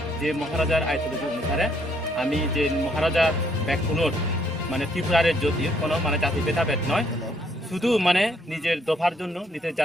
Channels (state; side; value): normal; both; correlation 0.69